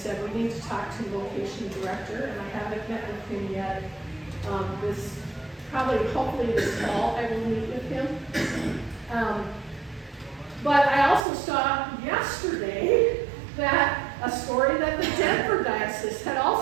we need to talk to the vocation director, and I haven't met with him yet. Hopefully this fall, I will meet with him. But I also saw yesterday that a story that the Denver diocese had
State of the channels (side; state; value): left; drops out; at 11.2 s